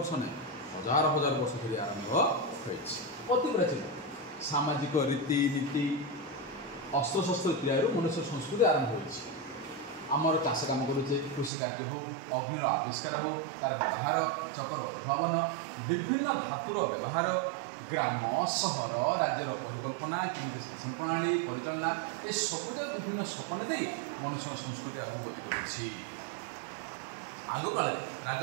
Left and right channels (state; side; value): drops out; left; at 11.5 s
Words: नहीं हजार हजार वर्ष धरी आरंभ अति प्राचीन सामाजिक रीति नीति अस्त्र शस्त्र तैयार मनुष्य संस्कृति आरंभ होमर चाष कम करुचे कृषि कार्य हो अग्निर आविष्कार हो तार व्यवहार चकर उद्भावन विभिन्न धातुर व्यवहार ग्राम सहर राज्यर परिकल्पना केमी शासन प्रणाली परिचालना ये सबुज विभिन्न सपन दे मनुष्य संस्कृति आगे गति कर आग काल